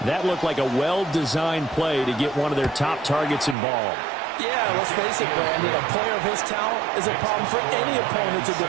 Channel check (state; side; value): drops out; left; at 3.6 s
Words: That looked like a well-designed play to get one of their top targets involved. Yeah, let's face it, Brandon. A player of his talent is a problem for any opponent to